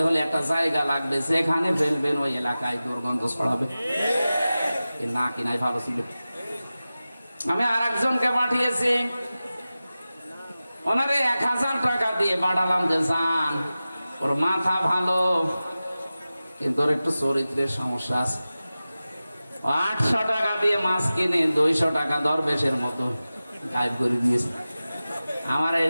হলে একটা জায়গা লাগবে, যেখানে ফেলবেন ওই এলাকায় দুর্গন্ধ ছড়াবে। না কিনাই ভালো ছিল। আমি আর একজনকে পাঠিয়েছি, ওনারে 1000 টাকা দিয়ে পাঠালাম যে যান, ওর মাথা ভালো, কিন্তু ওর একটু চরিত্রের সমস্যা আছে। 800 টাকা দিয়ে মাছ কিনে 200 টাকা দরবেশের মতো গায়েব করে দিয়েছে। আমার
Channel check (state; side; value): inverted; both; correlation -0.96